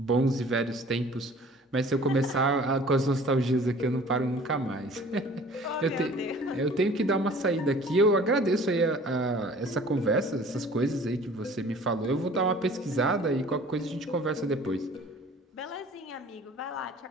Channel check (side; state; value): both; normal; correlation 0.49